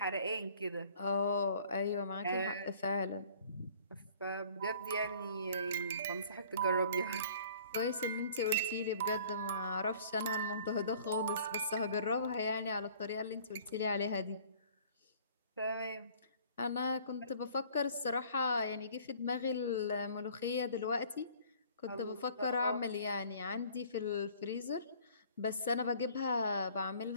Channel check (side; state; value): both; inverted; correlation -0.53